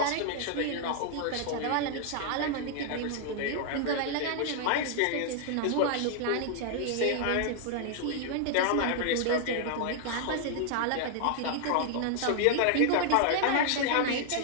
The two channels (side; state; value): both; different; correlation 0.00